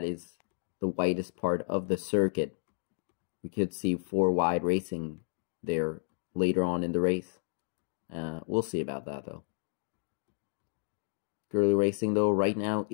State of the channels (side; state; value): right; silent; digital silence